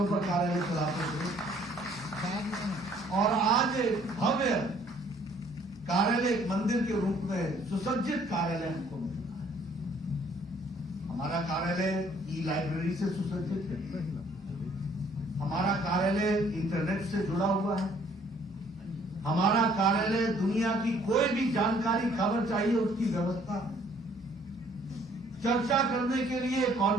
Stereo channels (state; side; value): normal; both; correlation 0.61